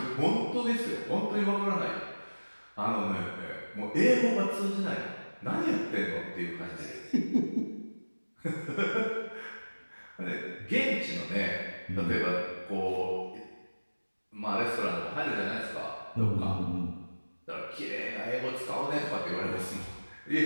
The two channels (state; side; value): inverted; both; correlation -1.00